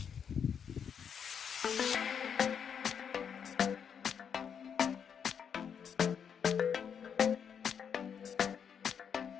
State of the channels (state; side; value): quieter; right; 7.5 dB